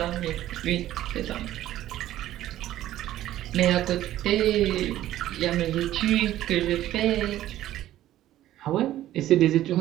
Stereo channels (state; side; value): quieter; left; 13.6 dB